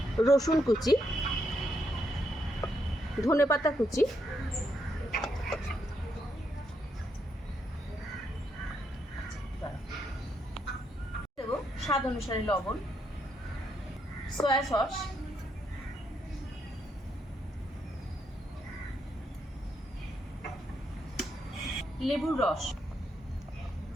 রসুন কুচি, ধনেপাতা কুচি, দেব স্বাদ অনুসারে লবণ, সয়া সস, লেবুর রস,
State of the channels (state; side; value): normal; both; correlation 0.78